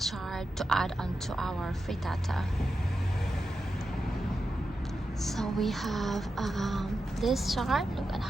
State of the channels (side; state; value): both; normal; correlation 0.89